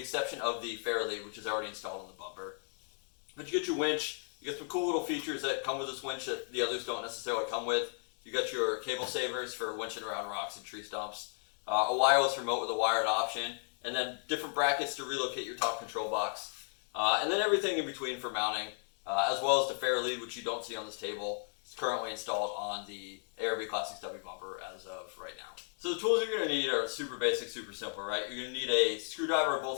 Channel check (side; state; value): right; silent; 55 dB below the other